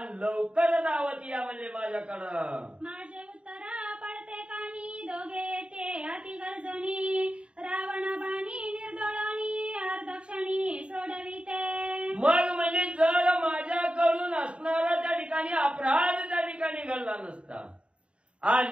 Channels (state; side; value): late; left; 0.058 ms